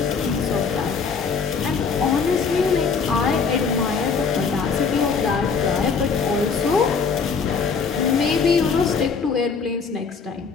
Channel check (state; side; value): quieter; right; 5.5 dB